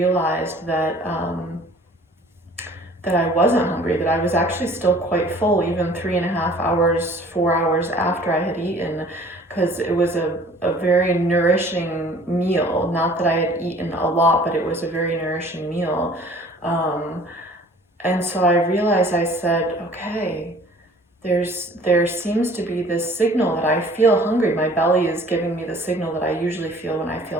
that I wasn't hungry, that I was actually still quite full, even 3.5 hours, 4 hours after I had eaten, because it was a very nourishing meal. Not that I had eaten a lot, but it was a very nourishing meal. And so I realized, I said, okay, there seems to be this signal that I feel hungry. My belly is giving me the signal that I usually feel when I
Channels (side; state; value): both; normal; correlation 0.50